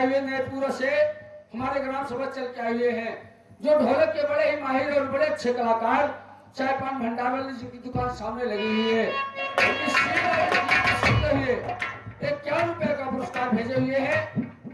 हुए नैपुरा से हमारे ग्राम सभा चल के आए हुए हैं, जो ढोलक के बड़े ही माहिर और बड़े अच्छे कलाकार चाय पान भंडार वाले जिनकी दुकान सामने लगी हुई है, एक 1 रुपए का पुरस्कार भेजे हुए हैं।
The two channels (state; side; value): identical; both; correlation 1.00